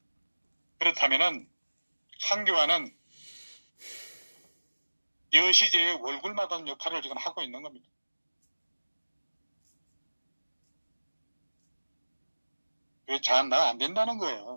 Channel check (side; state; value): both; inverted; correlation -1.00